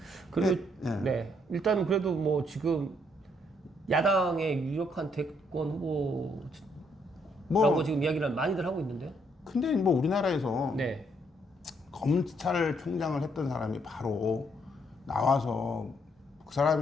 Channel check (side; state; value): both; normal; correlation 0.71